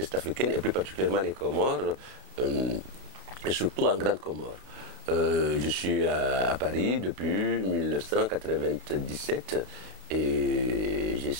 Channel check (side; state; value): left; late; 32 ms